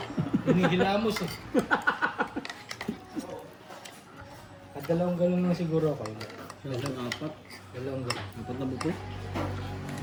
Hinihilamos eh. At dalawang galon lang siguro ako. Isang apat. Dalawang galon. Apat na buto.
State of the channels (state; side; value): identical; both; correlation 1.00